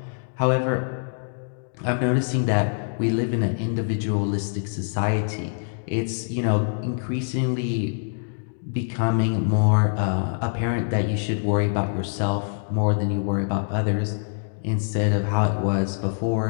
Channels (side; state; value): right; silent; digital silence